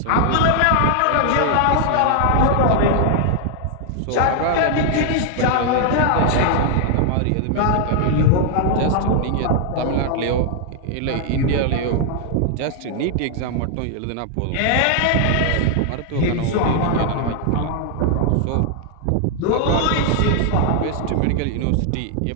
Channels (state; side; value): different; both; correlation 0.00